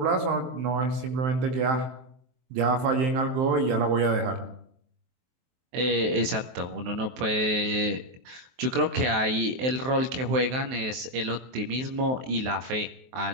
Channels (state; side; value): late; left; 23 ms